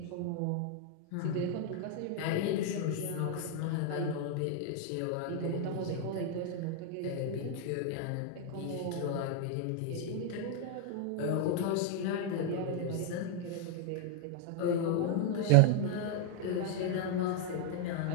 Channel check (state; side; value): different; both; correlation 0.00